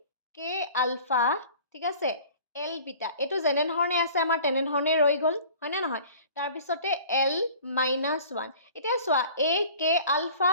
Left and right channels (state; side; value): inverted; both; correlation -0.46